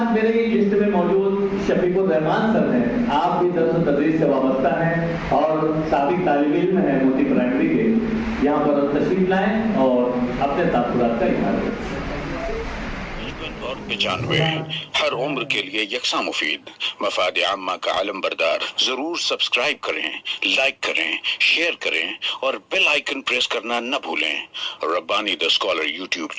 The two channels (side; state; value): both; identical; correlation 1.00